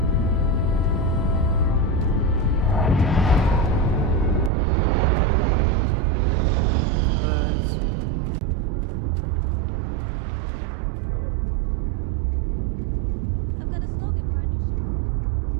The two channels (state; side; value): drops out; left; at 4.5 s